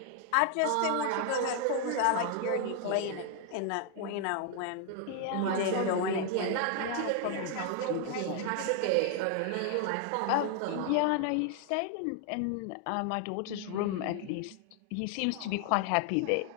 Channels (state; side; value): different; both; correlation 0.00